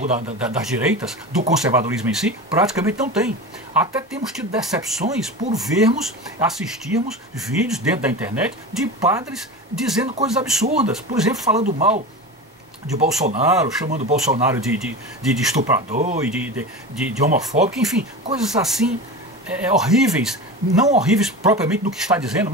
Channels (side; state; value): both; normal; correlation 0.27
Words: das direitas, do conservadorismo em si, praticamente não tem. Até temos tido decepções por assistirmos vídeos dentro da internet de padres dizendo coisas absurdas, por exemplo, falando mal de Bolsonaro, chamando Bolsonaro de estuprador e de homofóbico, enfim, coisas assim horríveis, não horríveis propriamente no que está dizendo,